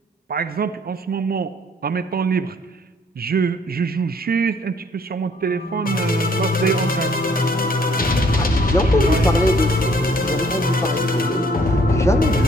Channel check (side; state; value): both; normal; correlation 0.62